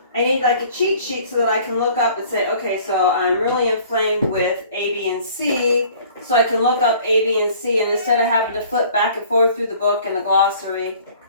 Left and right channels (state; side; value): inverted; both; correlation -0.52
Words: need like a cheat sheet so that I can look up and say, okay, so I'm really inflamed with A, B, and C. So I can look up A, B, and C, and instead of having to flip back and forth through the book and the glossary